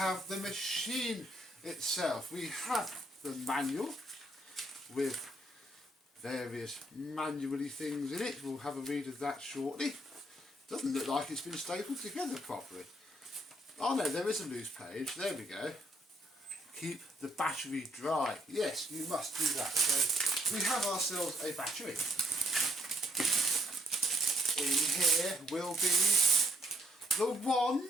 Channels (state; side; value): normal; both; correlation 0.70